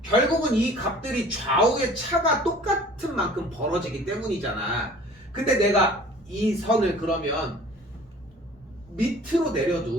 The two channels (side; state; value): both; normal; correlation 0.48